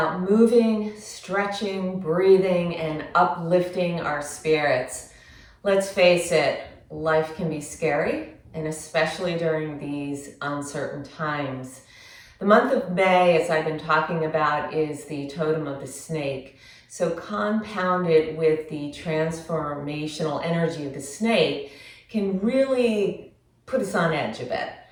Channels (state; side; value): identical; both; correlation 1.00